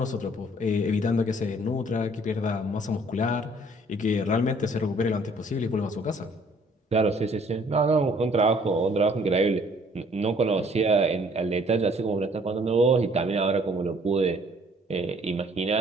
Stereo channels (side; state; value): both; normal; correlation 0.59